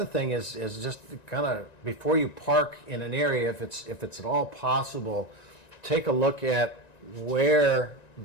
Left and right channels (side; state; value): right; late; 1.9 ms